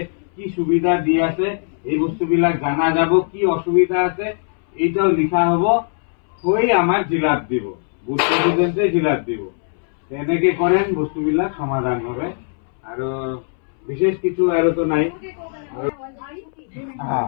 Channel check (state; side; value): silent; right; 64 dB below the other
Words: কি সুবিধা দি আছে এই বস্তুবিলাক জানা যাব। কি অসুবিধা আছে এইটাও লিখা হব, হৈ আমাৰ জিলাত দিব, বুথ প্ৰেচিডেণ্টে জিলাত দিব। তেনেকে কৰেন বস্তুবিলাক সমাধান হবে। আৰু বিশেষ কিছু আৰু তো নাই।